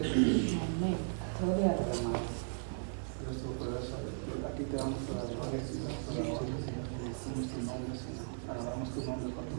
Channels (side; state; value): left; silent; digital silence